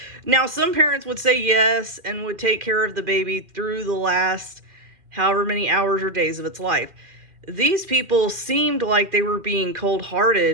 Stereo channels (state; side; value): late; left; 2.4 ms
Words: Now, some parents would say yes and would take care of the baby through the last however many hours or days of its life. These people seemed like they were being